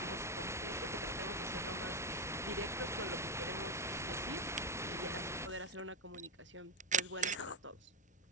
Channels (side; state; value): both; normal; correlation 0.05